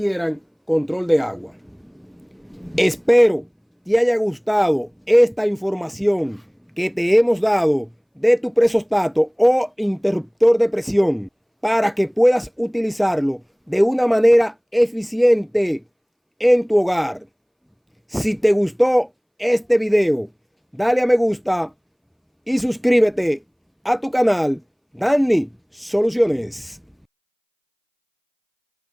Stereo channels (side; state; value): both; identical; correlation 1.00